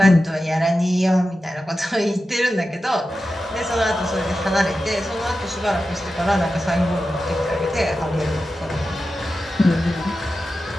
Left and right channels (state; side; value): normal; both; correlation 0.92